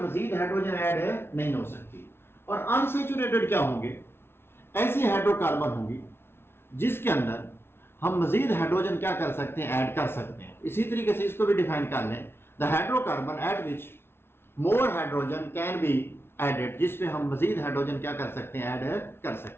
मजीद हाइड्रोजन ऐड नहीं हो सकती। और अनसैचुरेटेड क्या होंगे, ऐसी हाइड्रोकार्बन होंगी जिसके अंदर हम मजीद हाइड्रोजन क्या कर सकते हैं, ऐड कर सकते हैं। इसी तरीके से इसको भी डिफाइन कर लें, the hydrocarbon at which more hydrogen can be added, जिसपे हम मजीद हाइड्रोजन क्या कर सकते हैं, ऐड कर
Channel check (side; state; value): right; late; 0.12 ms